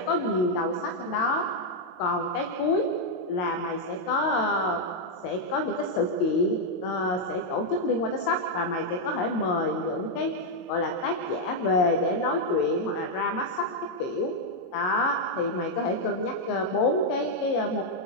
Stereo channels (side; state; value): right; late; 22 ms